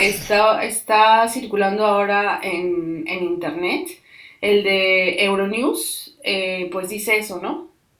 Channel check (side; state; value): both; identical; correlation 1.00